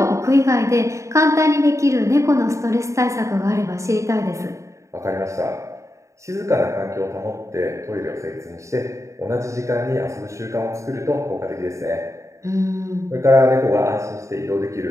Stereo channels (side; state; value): left; late; 0.15 ms